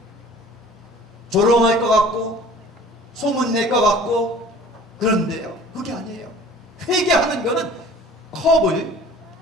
조롱할 것 같고 소문낼 것 같고. 그런데요, 그게 아니에요. 회개하는 거는 컵을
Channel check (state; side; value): normal; both; correlation 0.47